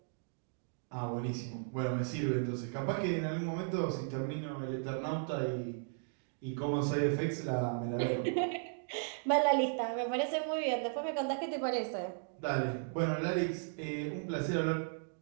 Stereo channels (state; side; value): silent; left; digital silence